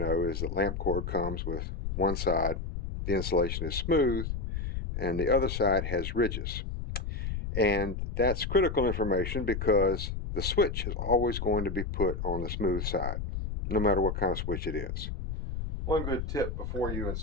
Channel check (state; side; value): noise; left; rumble, 4 dB below the sound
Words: is that lamp cord comes with one side, the insulation is smooth, and the other side has ridges. And that's critical information because the switch is always going to be put on the smooth side, no matter what kind of switch it is. One good tip before you